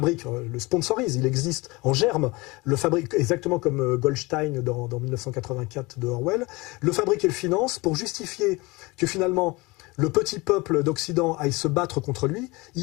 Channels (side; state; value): right; quieter; 23.8 dB